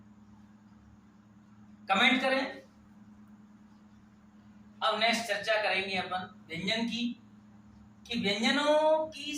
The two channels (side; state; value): both; identical; correlation 1.00